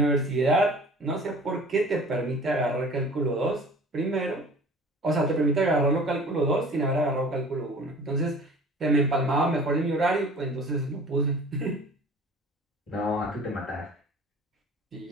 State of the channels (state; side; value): normal; both; correlation 0.46